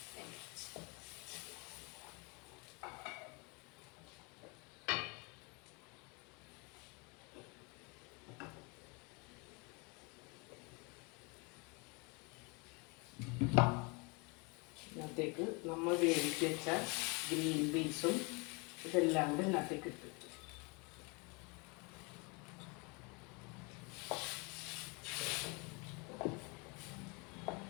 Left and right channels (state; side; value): quieter; right; 30.1 dB